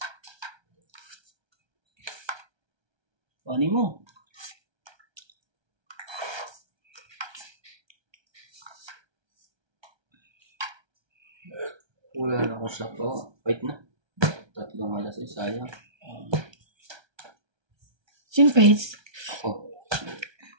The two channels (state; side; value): late; left; 1.3 ms